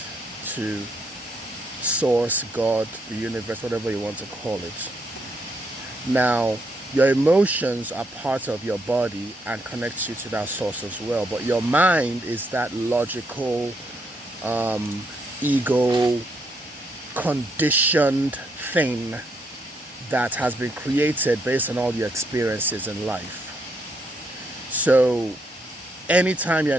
to source, God, the universe, whatever you want to call it. Now, your emotions are part of your body and connects you to that source as well. But your mind is that logical, ego, conditioned thing that has been created based on all your experiences in life. So anytime you're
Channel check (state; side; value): normal; both; correlation 0.75